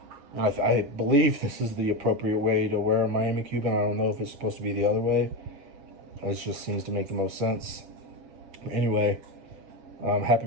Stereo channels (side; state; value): left; late; 7.8 ms